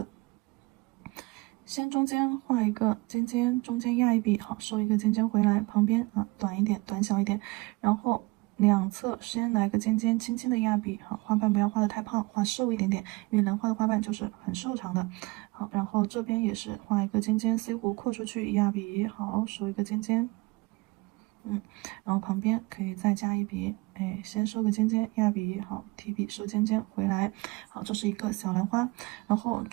先中间画一个尖尖，中间压一笔，好，收一个尖尖回来，旁边啊短一点，短小一点，然后两侧先来个尖尖，轻轻的压笔，好，花瓣不要画的太胖，画瘦一点点，因为兰花的花瓣就是很瘦长的，好，然后这边也是画一个尖尖，C 弧扩出去，压笔，好，收一个尖尖。然后旁边可以再加一笔，哎，先收个尖尖，压笔，好，提笔收尖尖回来，好，这是一个小兰花，然后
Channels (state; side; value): quieter; left; 23.9 dB